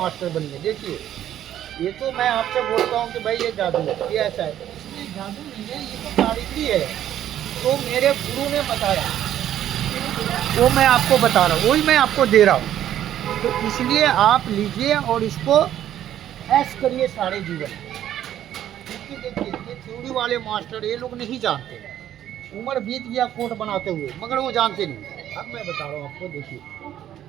बनिए। देखिए ये तो मैं आपसे बोलता हूँ कि भाई ये जादू है, ये ऐसा है, इसलिए जादू नहीं है, ये तो कारीगरी है। तो मेरे गुरु ने बताया, वो मैं आपको बता रहा हूँ, वही मैं आपको दे रहा हूँ। तो इसलिए आप लीजिए और इसको ऐश करिए सारे जीवन। क्योंकि देखिए ये थ्योरी वाले मास्टर ये लोग नहीं जानते, उम्र बीत गया कोट बनाते हुए, मगर वो जानते नहीं। अब मैं बता रहा हूँ आपको, देखिए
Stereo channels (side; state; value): left; quieter; 11.4 dB